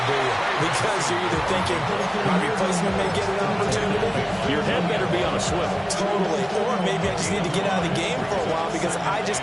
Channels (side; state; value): both; identical; correlation 1.00